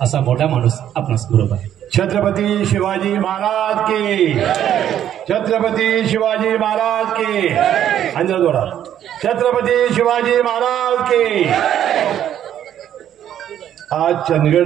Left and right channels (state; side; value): quieter; left; 10.6 dB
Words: असा मोठा माणूस आपणास बरोबर आहे. छत्रपती शिवाजी महाराज की, छत्रपती शिवाजी महाराज की. अंजल जोडा. छत्रपती शिवाजी महाराज की. आज